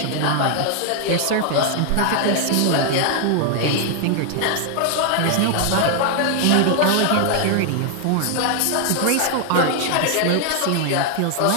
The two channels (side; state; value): both; different; correlation 0.00